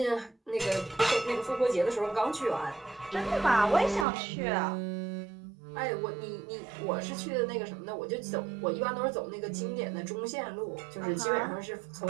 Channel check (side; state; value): left; drops out; at 4.0 s